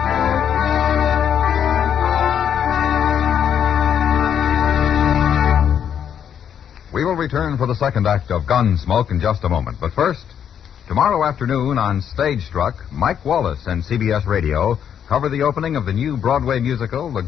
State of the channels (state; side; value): quieter; right; 8.7 dB